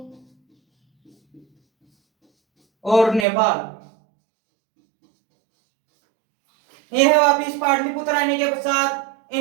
और नेपाल। यह वापिस पाटलिपुत्र आने के पश्चात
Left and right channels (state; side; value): drops out; left; at 3.2 s